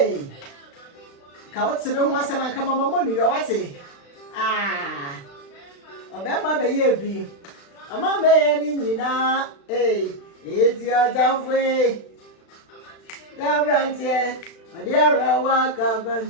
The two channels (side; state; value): right; late; 36 ms